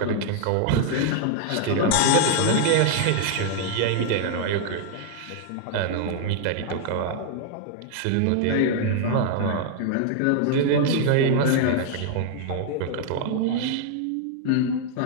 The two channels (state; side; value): different; both; correlation 0.00